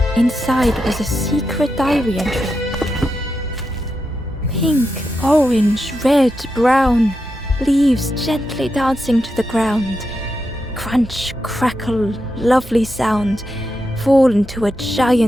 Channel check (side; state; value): right; noise; hum, 18 dB below the sound